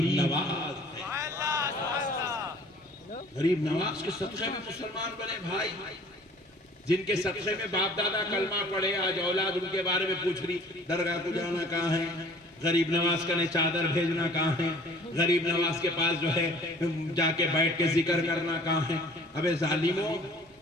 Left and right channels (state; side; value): normal; both; correlation 0.50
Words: نواز، غریب نواز کے صدقے میں مسلمان بنے بھائی، جن کے صدقے میں باپ دادا کلمہ پڑھے، آج اولاد ان کے بارے میں پوچھ رہی درگاہ کو جانا کہاں ہے، غریب نواز کا چادر بھیجنا کہاں ہے، غریب نواز کے پاس جو ہے جا کے بیٹھ کے ذکر کرنا کہاں ہے۔ ابے ظالموں،